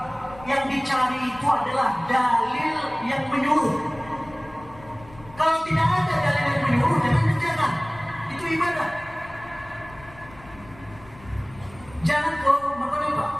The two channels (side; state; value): left; noise; rumble, 21 dB below the sound